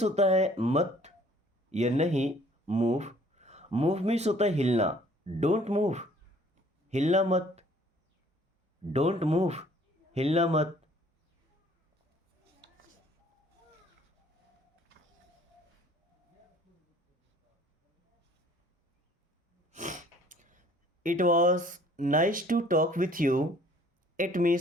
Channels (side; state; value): both; normal; correlation 0.56